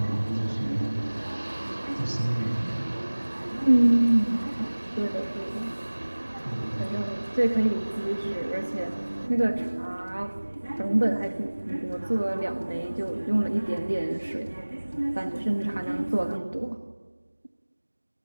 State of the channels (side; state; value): both; inverted; correlation -1.00